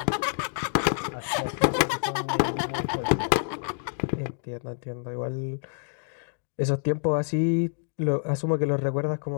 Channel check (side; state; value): right; silent; digital silence